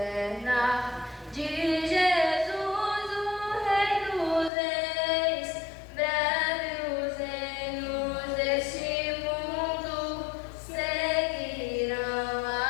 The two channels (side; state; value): right; drops out; at 4.5 s